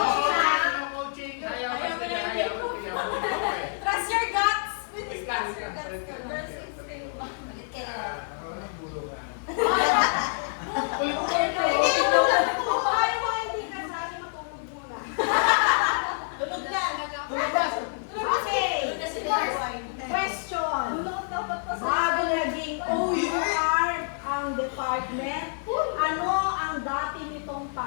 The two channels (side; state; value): right; silent; digital silence